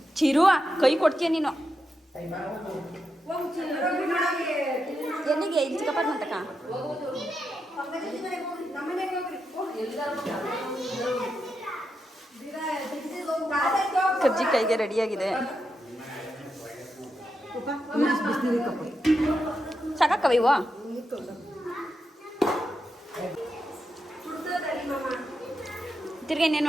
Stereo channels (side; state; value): both; normal; correlation 0.86